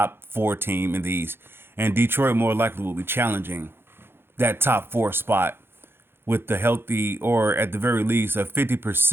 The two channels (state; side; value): late; left; 0.11 ms